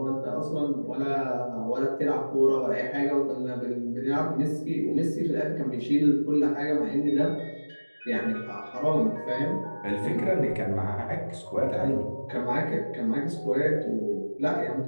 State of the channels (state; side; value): inverted; both; correlation -1.00